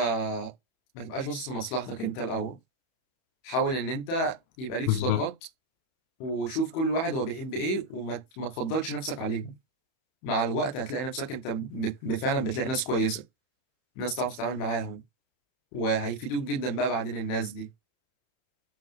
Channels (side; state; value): right; late; 31 ms